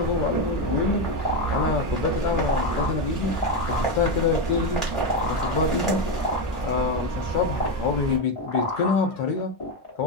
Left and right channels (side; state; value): both; normal; correlation 0.10